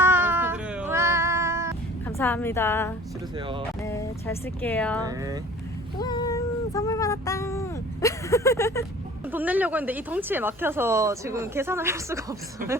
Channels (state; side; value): normal; both; correlation 0.47